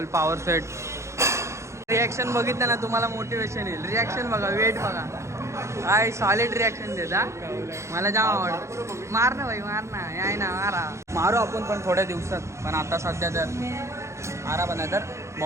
पॉवर सेट. रिॲक्शन बघितलं ना तुम्हाला मोटिवेशन येईल. रिॲक्शन बघा, वेट बघा, काय सॉलिड रिॲक्शन देता. मला जाम आवडतं. मार ना भाई, मार ना, याय ना, मारा. मारू आपण पण थोड्या दिवसात, पण आता सध्या तर आरा बना तर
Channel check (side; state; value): left; late; 0.14 ms